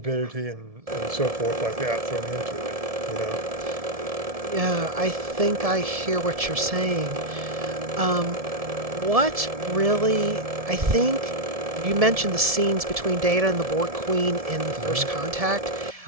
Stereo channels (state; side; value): late; left; 1.7 ms